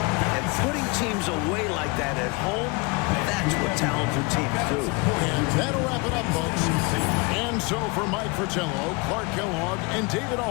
And putting teams away like that at home, that's what talented teams do. And that'll wrap it up, folks. And so for Mike Fratello, Clark Kellogg, and David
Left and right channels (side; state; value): right; quieter; 28.0 dB